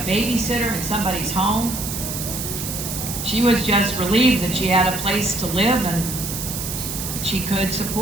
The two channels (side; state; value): right; noise; hiss, 5 dB below the sound